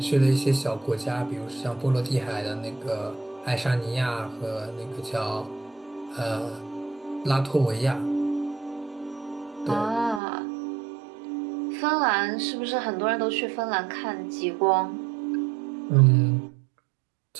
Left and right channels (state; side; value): drops out; left; at 10.2 s